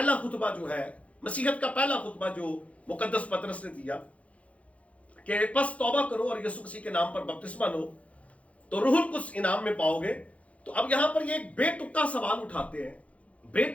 خطبہ جو ہے, مسیحیت کا پہلا خطبہ جو مقدس پطرس نے دیا کہ پس توبہ کرو اور یسوع مسیح کے نام پر بپتسمہ لو تو روح القدس انعام میں پاؤ گے. تو اب یہاں پر یہ ایک بے تکا سوال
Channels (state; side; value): late; right; 0.065 ms